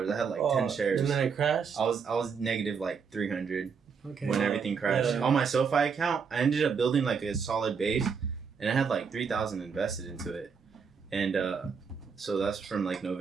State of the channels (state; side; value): quieter; left; 6.0 dB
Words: I had like 10 shares. And then it crashed. I was negative like 300 Okay. when everything crashed. Yeah. On my SoFi account, I ended up building like a solid base, and I had like 3,000 invested into it, and so that's from like